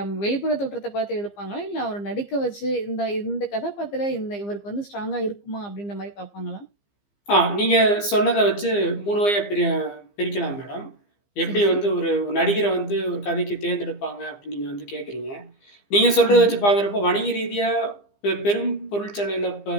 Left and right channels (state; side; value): late; right; 15 ms